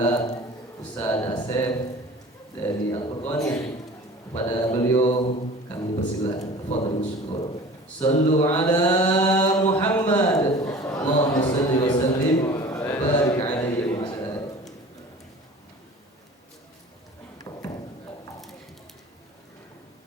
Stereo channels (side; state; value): both; normal; correlation 0.42